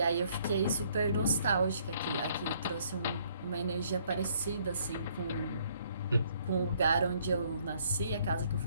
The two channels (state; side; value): inverted; both; correlation -0.65